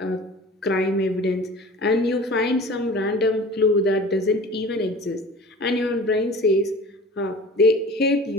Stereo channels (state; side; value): normal; both; correlation 0.41